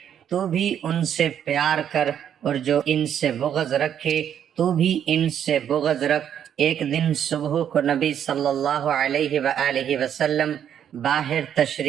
تو بھی ان سے پیار کر، اور جو ان سے بغض رکھے تو بھی ان سے بغض رکھ۔ ایک دن صبح کو نبی صلی اللہ علیہ وآلہ وسلم باہر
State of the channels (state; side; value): quieter; left; 9.3 dB